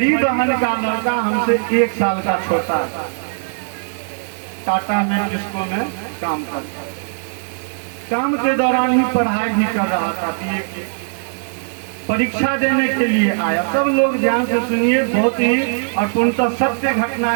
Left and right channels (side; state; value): left; silent; digital silence